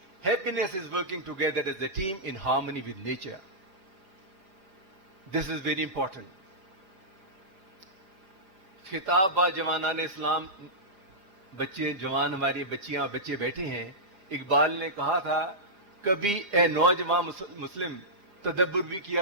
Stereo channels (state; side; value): late; left; 4.9 ms